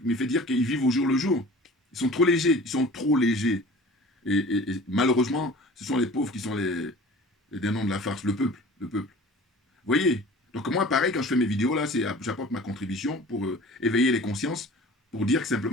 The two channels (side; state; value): both; normal; correlation 0.43